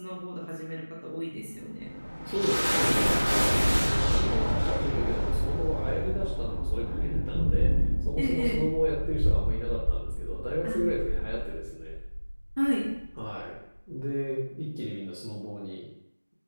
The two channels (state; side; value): inverted; both; correlation -1.00